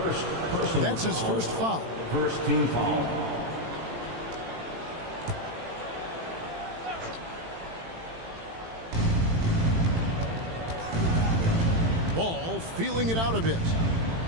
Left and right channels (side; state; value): left; late; 18 ms